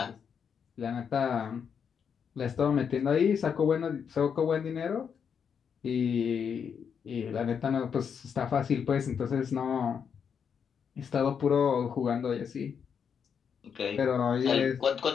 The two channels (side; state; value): right; quieter; 7.1 dB